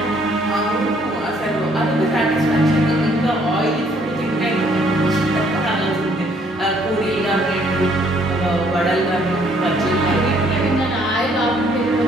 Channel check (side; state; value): both; normal; correlation 0.65